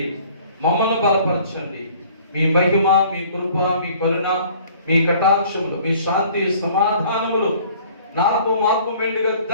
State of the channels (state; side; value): inverted; both; correlation -0.53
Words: మమ్మల్ని బలపరచండి. మీ మహిమ, మీ కృప, మీ కరుణ, మీ కటాక్షములు, మీ శాంతి సమాధానములు మాకు మెండుగా